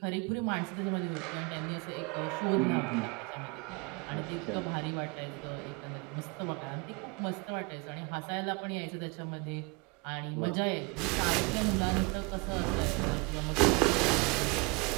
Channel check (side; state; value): left; quieter; 29.0 dB